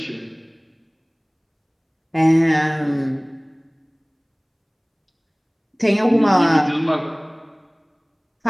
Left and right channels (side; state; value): both; identical; correlation 1.00